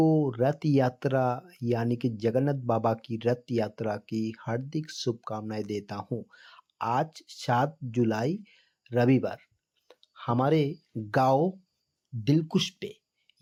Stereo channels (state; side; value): identical; both; correlation 1.00